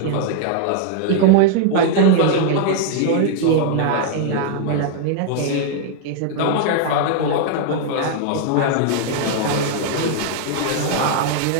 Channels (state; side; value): different; both; correlation 0.00